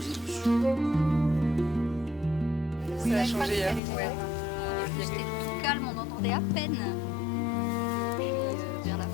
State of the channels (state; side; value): drops out; right; at 3.8 s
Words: dessus. Ça a changé hier. Ouais. C'était tout calme, on entendait à peine. Vers la